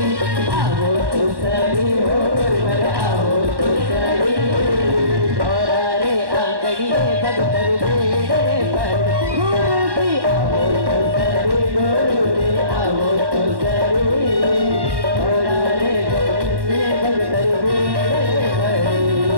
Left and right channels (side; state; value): left; late; 1.1 ms